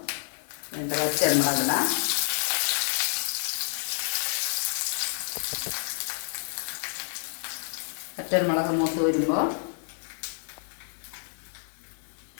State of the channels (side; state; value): right; silent; digital silence